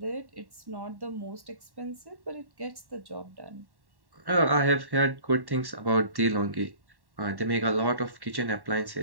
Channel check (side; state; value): left; late; 1.1 ms